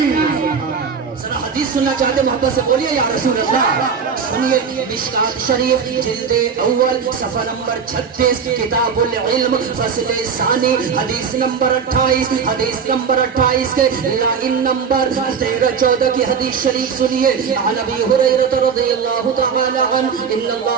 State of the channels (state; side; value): quieter; left; 6.3 dB